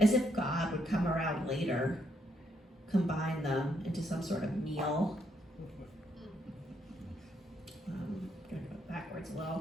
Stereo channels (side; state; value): both; normal; correlation 0.75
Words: if God would come around later, combine them into some sort of meal. I'm going to go backwards a